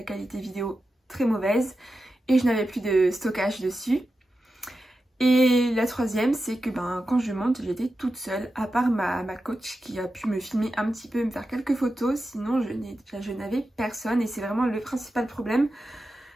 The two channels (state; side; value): normal; both; correlation 0.91